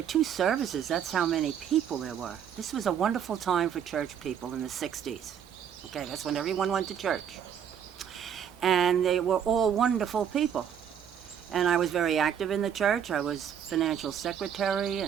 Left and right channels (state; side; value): quieter; left; 8.5 dB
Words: 2 services, that's how many people there were. This was a wonderful time for church people in the 60s. Okay, that's when everyone went to church. And they were all wonderful people. And I was very active in the church. I was financial secretary,